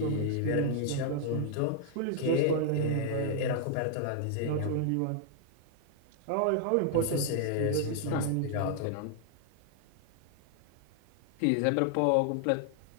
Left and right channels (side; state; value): both; different; correlation 0.00